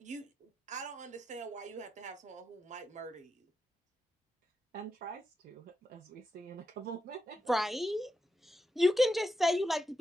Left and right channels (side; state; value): both; normal; correlation 0.86